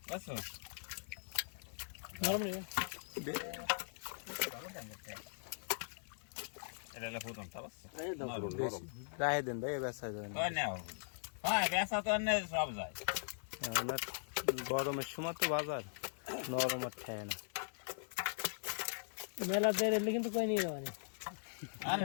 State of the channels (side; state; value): right; silent; 51 dB below the other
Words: বুঝছো। নরম নেই এটা হলো প্রথম তা বুঝছো। রাহে দেন ভাই বেচা যায় না ওই নাও হ্যাঁ বেচা তো অন্য সব যায়। আপনার গরমের সময় তো বাজার নরম আর খায় না মেলা দেরে কিন্তু কই নিয়ে যাওয়া নেই আর